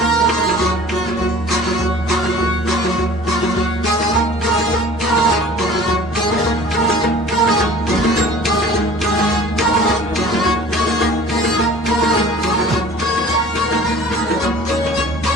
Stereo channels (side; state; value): both; normal; correlation 0.46